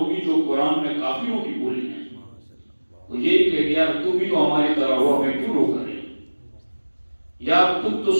جو قرآن میں کافروں کی بولی ہیں۔ وہ یہ کہ یار تم بھی تو ہماری طرح ہو، ہمیں کیوں روک رہے ہیں؟ یار تم تو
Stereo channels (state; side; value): inverted; both; correlation -1.00